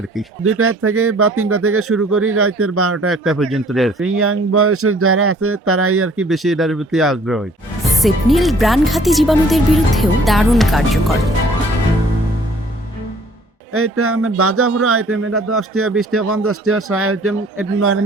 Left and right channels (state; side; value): normal; both; correlation 0.56